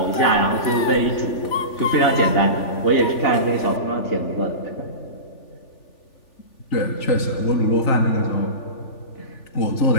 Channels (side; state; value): right; late; 3.4 ms